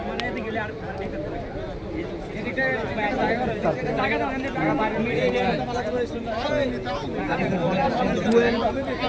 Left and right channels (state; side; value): identical; both; correlation 1.00